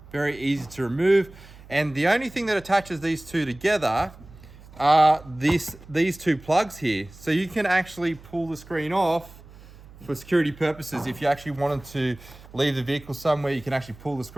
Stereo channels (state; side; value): noise; right; hum, 21 dB below the sound